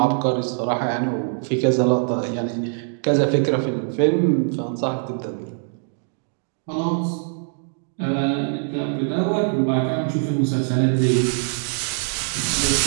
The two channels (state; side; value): silent; left; 64 dB below the other